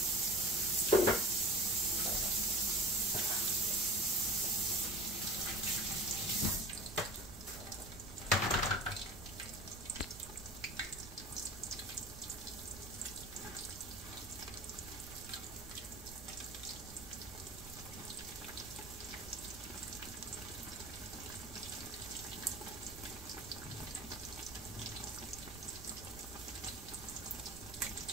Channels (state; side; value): noise; right; rumble, 14 dB below the sound